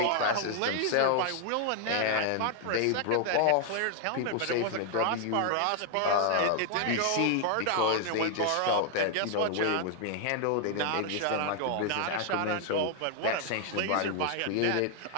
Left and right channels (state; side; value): different; both; correlation 0.00